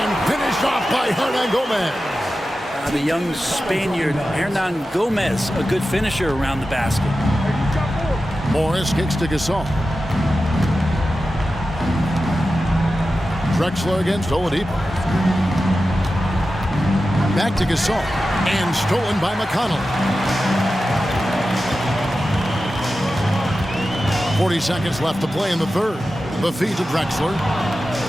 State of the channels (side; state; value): both; normal; correlation 0.93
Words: finished off by Hernan Gomez. The young Spaniard, Hernan Gomez, a good finisher around the basket. Morris kicks to Gasol. Drexler against Oladipo. Back to Gasol. And stolen by McConnell. 40 seconds left to play in the 3rd. The feed to Drexler.